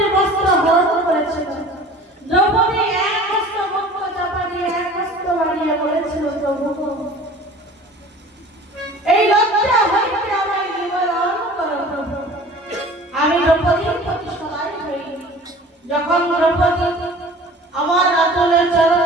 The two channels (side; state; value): both; normal; correlation 0.44